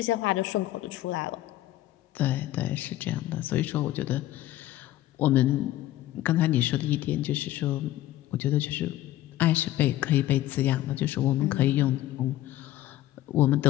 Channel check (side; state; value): right; quieter; 14.8 dB